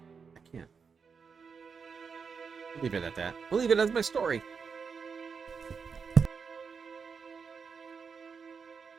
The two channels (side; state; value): left; quieter; 5.7 dB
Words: I can't. We'll leave it at that. We'll leave it as my story.